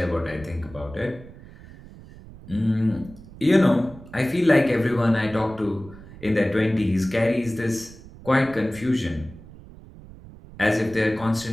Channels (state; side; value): noise; right; rumble, 19 dB below the sound